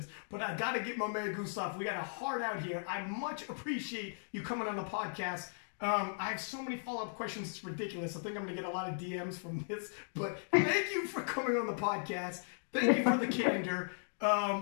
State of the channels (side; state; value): right; silent; digital silence